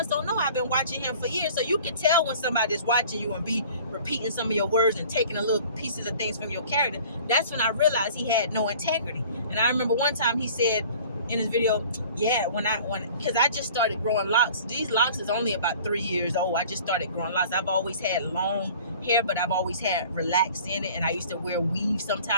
don't know I've been watching him for years. So you can tell when somebody's watching you and be repeating some of your words and taking a little pieces of things from your character. That's when I realized he had no integrity. And I remember one time he said in his video, yeah, because I just started growing locks. These locks is only about 3 years old. I just started growing locks. I've always had long hair, but I've always had relaxed in it, and I used to wear weave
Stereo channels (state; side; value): inverted; both; correlation -0.47